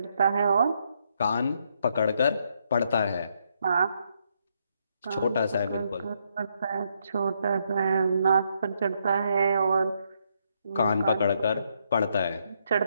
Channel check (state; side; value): inverted; both; correlation -0.75